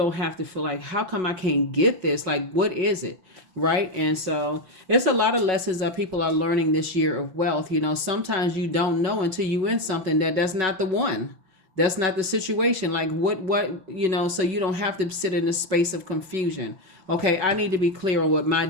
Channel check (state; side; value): late; left; 5.4 ms